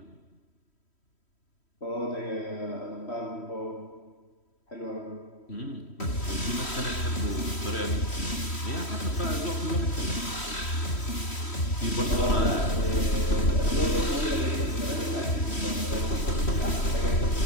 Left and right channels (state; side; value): late; right; 3.1 ms